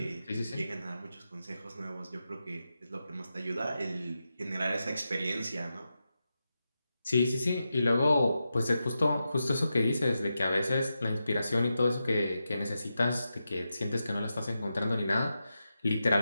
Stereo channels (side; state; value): both; inverted; correlation -0.89